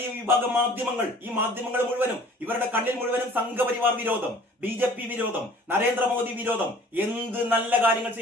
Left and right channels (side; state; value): both; normal; correlation 0.50